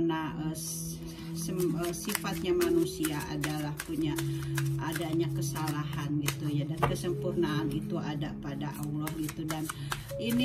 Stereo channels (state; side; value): identical; both; correlation 1.00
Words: sifatnya manusia adalah punya adanya kesalahan gitu ya, dan kesempurnaan itu ada pada Allah gitu. Dan